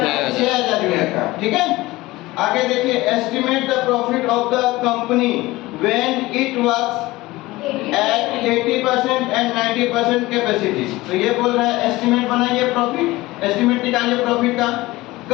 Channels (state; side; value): quieter; right; 19.4 dB